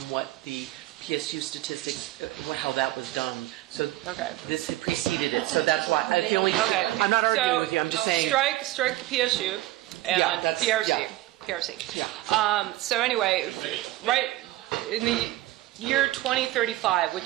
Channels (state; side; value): quieter; left; 16.9 dB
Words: what the PSU statistics, how that was done. So Okay. this had preceded it. So that's why. Okay. I'm not arguing So, with you. I'm just saying. Strike the PSU and Yeah, that's- PRC. yeah. PRC. Yeah. So anyway, right in the year 2035,